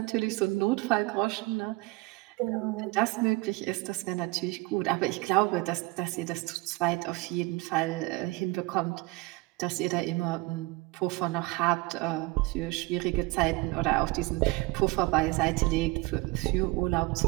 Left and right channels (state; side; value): quieter; left; 22.7 dB